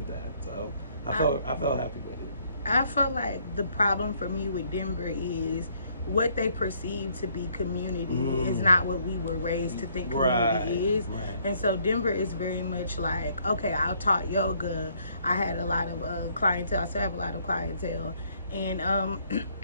that. So I felt happy with it. I felt like the problem for me with Denver is what they perceive to be community is not what we were raised to think community is. Right. And so Denver is very much like, okay, I taught yoga. I had a lot of clientele. I still have a lot of clientele. And,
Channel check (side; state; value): both; inverted; correlation -0.66